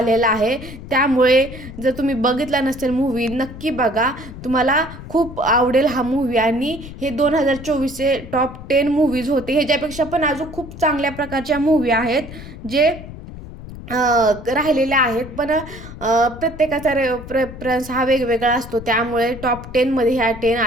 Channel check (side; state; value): left; noise; rumble, 13 dB below the sound